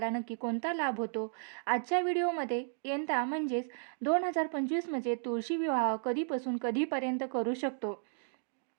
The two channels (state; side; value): silent; left; digital silence